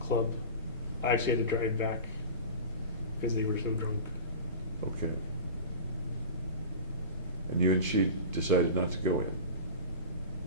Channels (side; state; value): both; inverted; correlation -0.32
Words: club, I actually had to drive back because they were so drunk. Okay. And you and she decided not to go in?